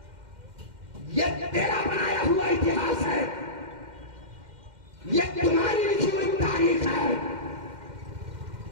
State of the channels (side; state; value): left; late; 2.1 ms